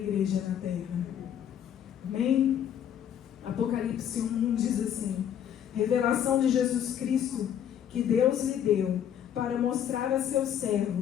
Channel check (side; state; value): right; quieter; 9.6 dB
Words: na terra. Amém? Apocalipse 1 diz assim: revelação de Jesus Cristo que Deus lhe deu para mostrar a seus